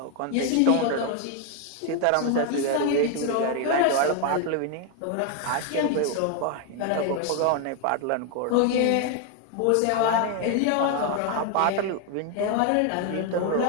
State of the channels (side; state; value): both; different; correlation 0.01